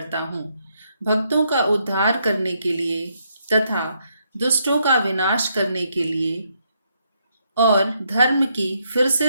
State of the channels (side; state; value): both; inverted; correlation -0.76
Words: हूँ, भक्तों का उद्धार करने के लिए तथा दुष्टों का विनाश करने के लिए और धर्म की फिर